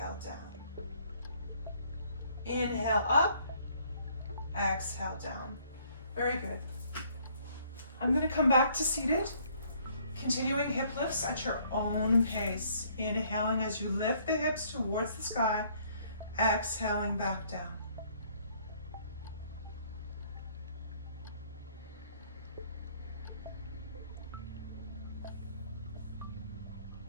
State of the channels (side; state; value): both; inverted; correlation -0.63